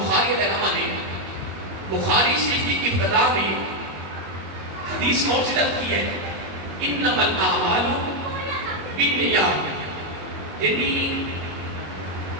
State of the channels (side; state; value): left; late; 21 ms